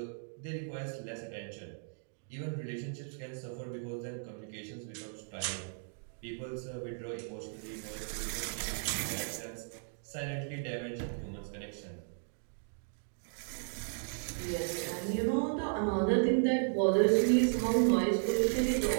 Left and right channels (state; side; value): silent; left; digital silence